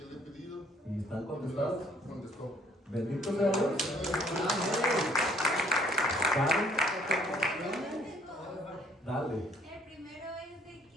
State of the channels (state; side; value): normal; both; correlation 0.62